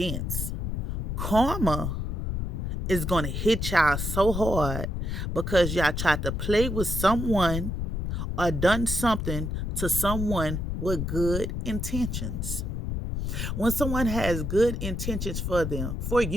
Karma is going to hit y'all so hard because y'all tried to play with someone or done something to someone with good intentions. When someone has good intentions for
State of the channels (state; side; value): noise; left; rumble, 2 dB below the sound